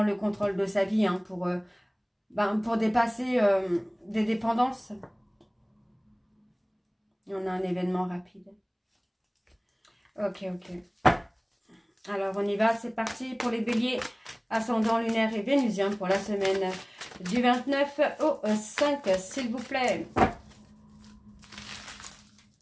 le contrôle de sa vie hein, pour dépasser des dépendances. On a un événement rapide. Ok. Alors, on y va. C'est parti pour les béliers, ascendant lunaire et vénusien pour la semaine du 29 au 5, s'il vous plaît.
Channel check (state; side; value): identical; both; correlation 1.00